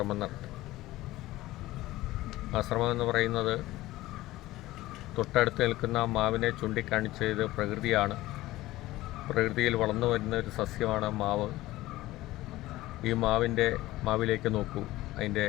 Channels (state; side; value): quieter; right; 17.2 dB